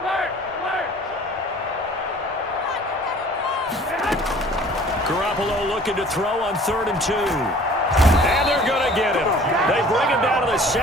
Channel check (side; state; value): both; normal; correlation 0.50